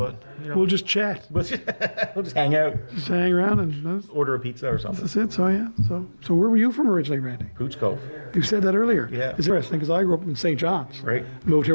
we'll just chat. We'll just hang out. Just hang around and order a pizza or something. That's it. So where were you from originally, Randy? Pooch Cove. You said that earlier. Yeah. It's interesting because I grew up in St. John's. Right. Moved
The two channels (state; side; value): inverted; both; correlation -1.00